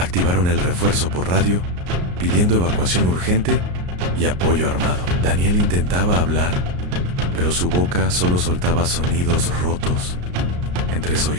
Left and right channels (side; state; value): left; late; 34 ms